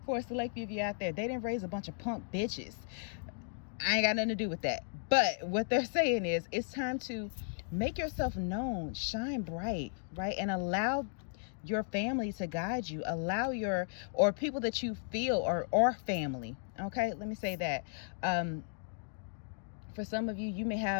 for a select few of you out there, they didn't raise a bunch of punk bitches. I ain't got nothing to do with that. But what they're saying is, it's time to make yourself known, shine bright, right? And allow your family to guide you. Allow your, or people that you feel or family. Okay, let me say that. For some of you, you may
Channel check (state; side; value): silent; right; digital silence